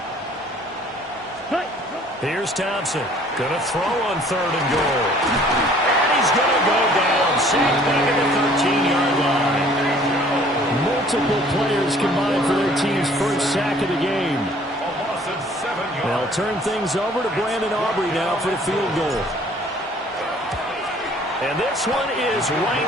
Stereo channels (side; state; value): both; normal; correlation 0.55